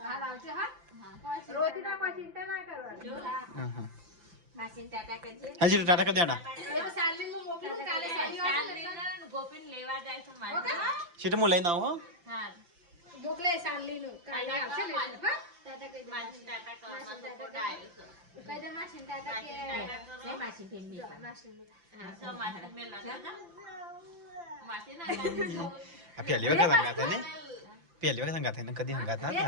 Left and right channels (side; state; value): left; late; 5.8 ms